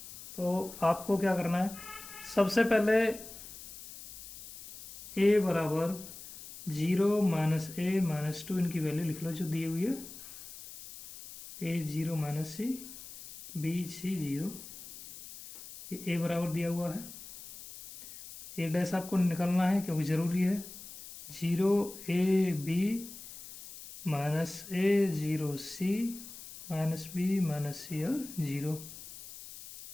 तो आपको क्या करना है, सबसे पहले ए बराबर 0 -a -2 इनकी वैल्यू लिख लो जो दी हुई है। a 0 -c b c 0 ये ए बराबर दिया हुआ है, ए डैश आपको निकालना है क्योंकि ज़रूरी है। 0 A B minus A 0 C minus B minus C और 0,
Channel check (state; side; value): noise; left; hiss, 14 dB below the sound